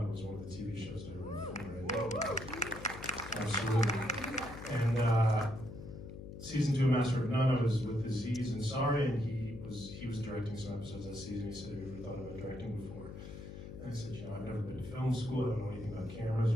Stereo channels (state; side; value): noise; left; hum, 11 dB below the sound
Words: was one of the TV shows that I wrote for. Absolutely. And season 2 of Master of None, I was with Aziz Ansari, and he was directing some episodes that season. He said, "Have you ever thought about directing before?" And I said, I've never been to film school. I don't know anything about cameras